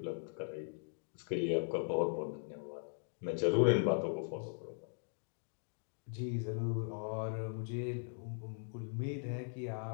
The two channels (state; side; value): silent; right; digital silence